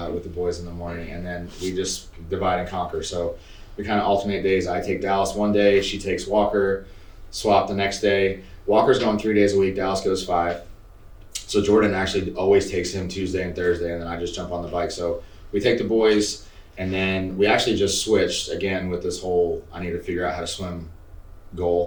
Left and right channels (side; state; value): both; identical; correlation 1.00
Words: with the boys in the morning, and then we just divide and conquer. So we kind of alternate days. I take Dallas one day, she takes Walker, swap the next day. Walker's going 3 days a week, Dallas goes 5. So Jordan actually always takes him Tuesday and Thursday, and then I just jump on the bike. So we take the boys, and then we actually just switched again with this whole I need to figure out how to swim